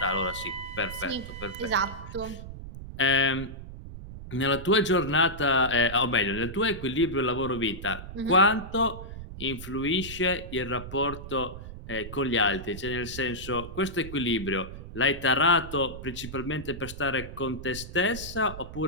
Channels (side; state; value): right; noise; rumble, 11 dB below the sound